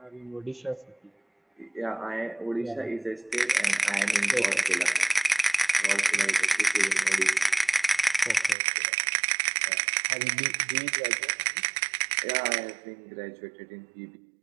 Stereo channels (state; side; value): drops out; left; at 8.6 s